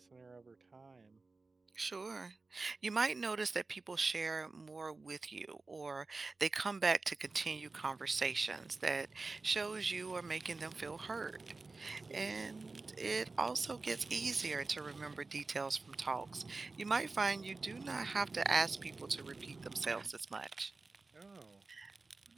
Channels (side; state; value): left; quieter; 3.7 dB